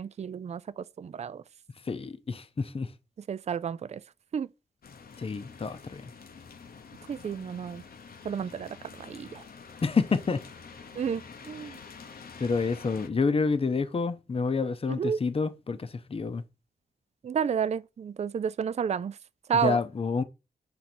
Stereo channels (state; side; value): normal; both; correlation 0.57